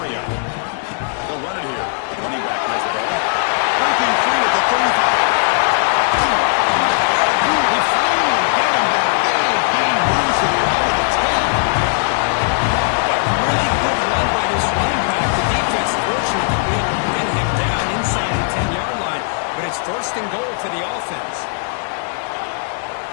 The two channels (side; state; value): right; silent; 67 dB below the other